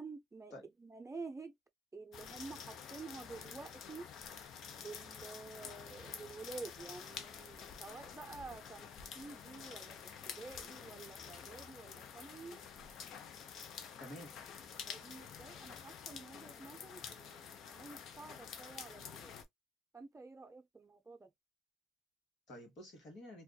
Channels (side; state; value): both; normal; correlation 0.64